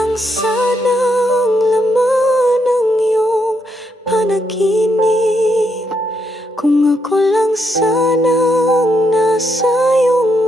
sana ang laman ng iyong panaginip, kung ako lang sana ang nasa iyong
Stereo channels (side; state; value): both; normal; correlation 0.78